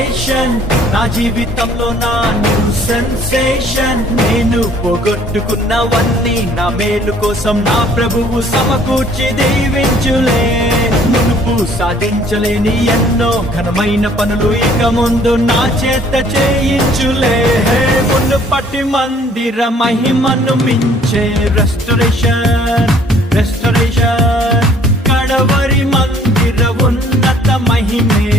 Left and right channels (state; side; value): normal; both; correlation 0.58